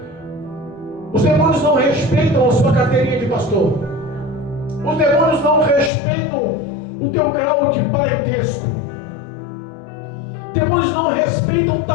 Os demônios não respeitam a sua carteirinha de pastor. Os demônios não respeitam o teu grau de parentesco. Demônios não respeitam o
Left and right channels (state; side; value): drops out; right; at 5.9 s